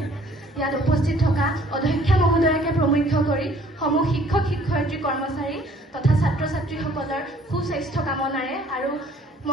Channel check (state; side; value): normal; both; correlation 0.57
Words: ইয়াত উপস্থিত থকা অধ্যক্ষা মহোদয়াকে প্ৰমুখ্য কৰি সমূহ শিক্ষক শিক্ষয়িত্ৰী কৰ্মচাৰী তথা ছাত্ৰ ছাত্ৰীসকলৰ সুস্বাস্থ্য কামনাৰে আৰু